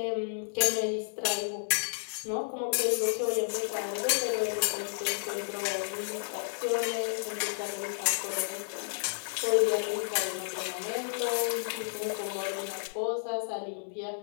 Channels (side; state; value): right; silent; digital silence